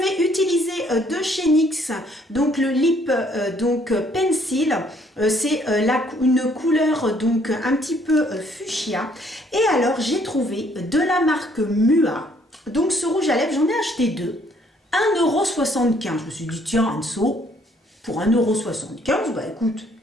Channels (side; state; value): both; normal; correlation 0.64